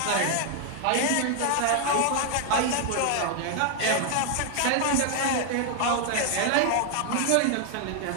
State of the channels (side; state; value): both; different; correlation 0.00